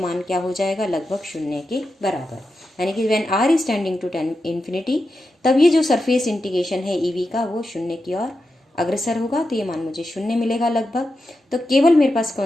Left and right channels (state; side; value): normal; both; correlation 0.89